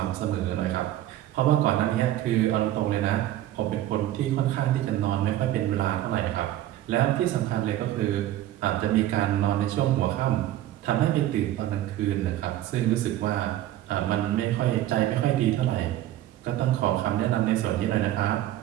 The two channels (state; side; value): quieter; left; 13.6 dB